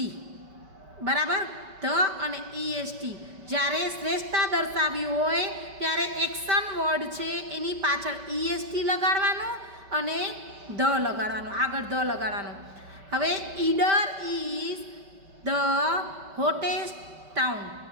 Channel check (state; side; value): late; left; 5.2 ms